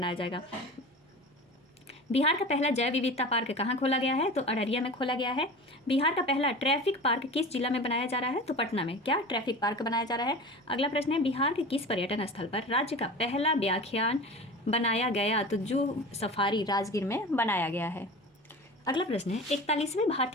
जाएगा। बिहार का पहला जैव विविधता पार्क कहाँ खोला गया है? तो अररिया में खोला गया है। बिहार का पहला ट्रैफिक पार्क किस जिला में बनाया जा रहा है? तो पटना में। क्या ट्रैफिक पार्क बनाया जा रहा है? अगला प्रश्न है, बिहार के किस पर्यटन स्थल पर राज्य का पहला व्याख्यान बनाया गया? तो जू सफारी राजगीर में बनाया गया है। अगला प्रश्न है, 41वें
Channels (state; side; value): normal; both; correlation 0.34